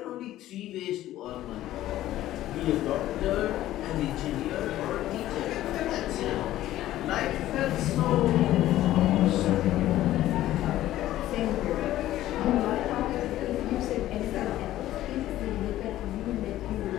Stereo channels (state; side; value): quieter; right; 14.2 dB